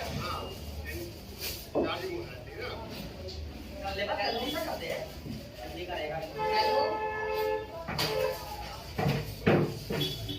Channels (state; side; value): identical; both; correlation 1.00